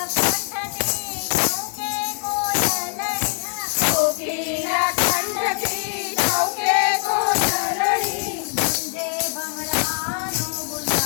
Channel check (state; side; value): silent; right; 59 dB below the other